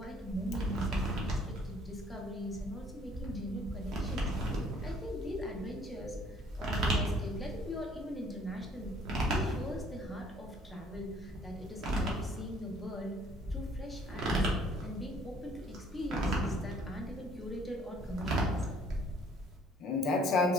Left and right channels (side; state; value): both; normal; correlation 0.59